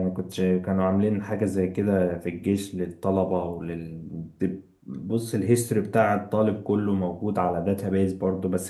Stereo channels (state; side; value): identical; both; correlation 1.00